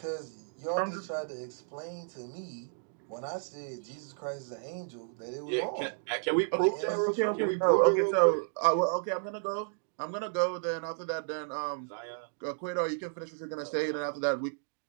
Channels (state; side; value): silent; left; digital silence